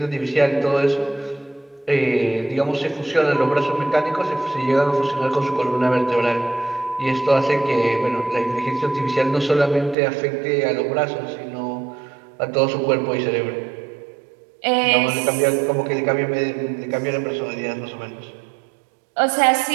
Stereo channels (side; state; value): left; drops out; at 10.0 s